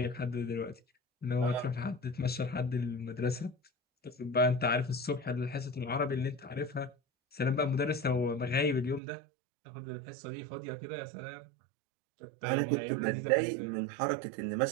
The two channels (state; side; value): drops out; left; at 9.0 s